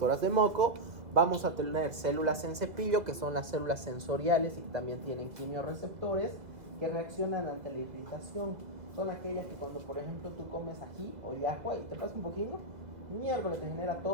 de moco. Vamos a tener células en cepillo, que son las células sensoriales y que también tienen quimiorreceptores que reaccionan ante la irritación. Son aquellas que cuando, por ejemplo, tú comes ají o yahua y te pasa un poquito, miércoles te genera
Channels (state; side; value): late; left; 1.8 ms